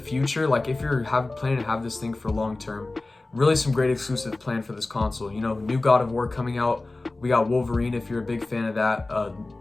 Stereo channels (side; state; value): right; quieter; 3.1 dB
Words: if you're planning to have this thing for long term, really some great exclusives planned for this console. New God of War coming out. We got Wolverine if you're a big fan of that.